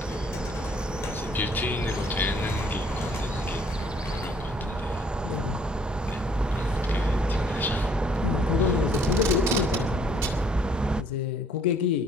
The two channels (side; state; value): both; normal; correlation 0.62